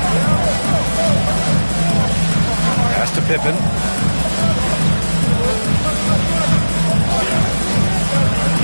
Pass to Pippen.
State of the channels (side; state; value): both; inverted; correlation -1.00